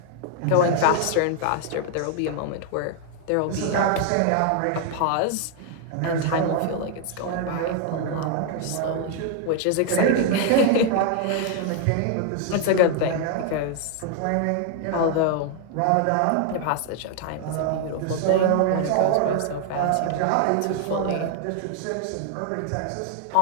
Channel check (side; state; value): both; different; correlation 0.00